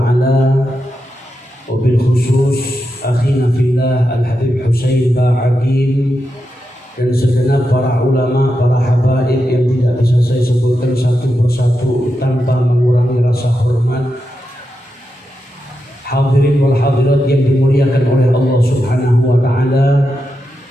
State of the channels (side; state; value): both; normal; correlation 0.87